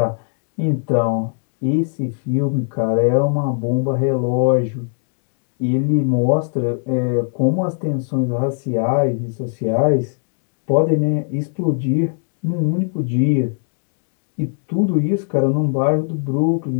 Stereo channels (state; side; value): silent; right; 64 dB below the other